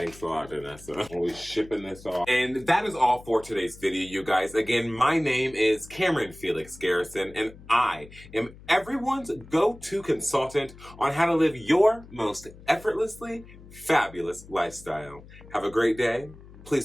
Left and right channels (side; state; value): left; noise; hum, 20 dB below the sound